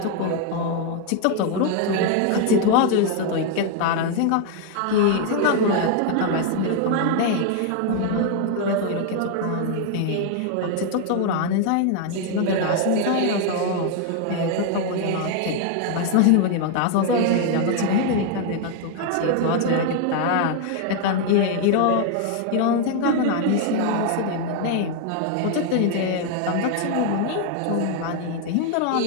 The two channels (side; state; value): both; different; correlation 0.00